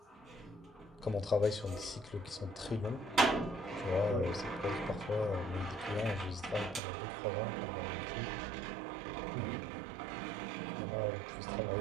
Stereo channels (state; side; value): drops out; left; at 6.8 s